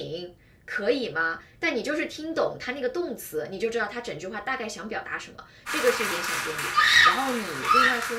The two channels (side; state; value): both; identical; correlation 1.00